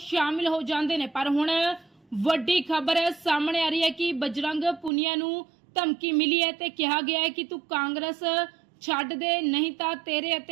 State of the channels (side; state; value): left; drops out; at 4.9 s